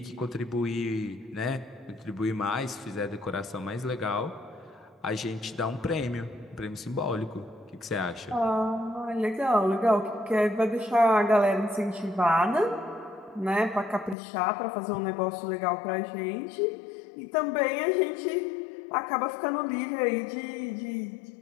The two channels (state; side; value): drops out; right; at 14.2 s